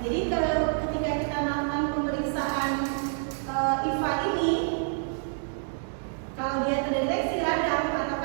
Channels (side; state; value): left; silent; digital silence